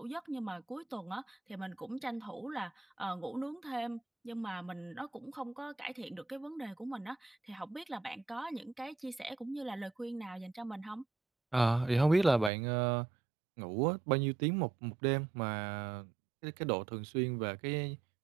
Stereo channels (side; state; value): left; drops out; at 12.5 s